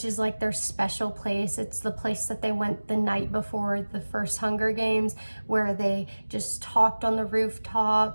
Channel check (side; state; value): both; inverted; correlation -1.00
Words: is like their special place. It's the place that they went the night before the first Hunger Games, where they just talked on the